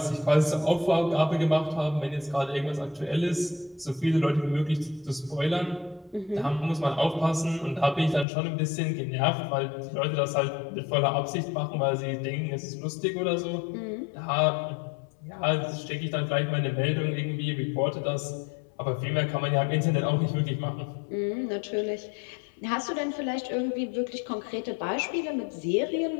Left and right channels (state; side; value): drops out; right; at 8.2 s